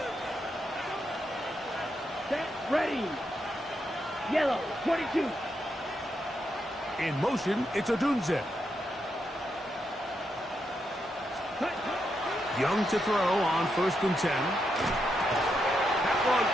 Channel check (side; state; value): both; normal; correlation 0.82